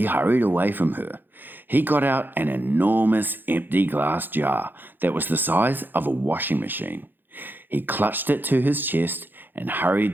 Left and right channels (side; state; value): left; late; 0.093 ms